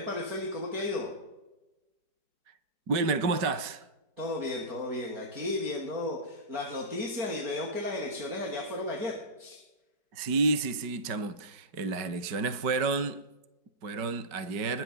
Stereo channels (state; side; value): late; left; 5.2 ms